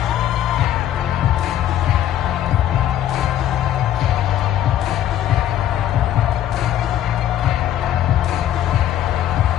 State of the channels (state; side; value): quieter; right; 11.6 dB